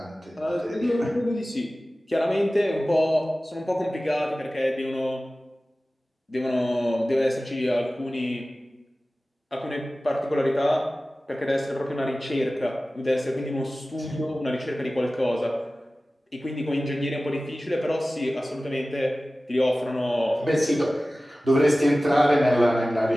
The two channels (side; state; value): both; normal; correlation 0.96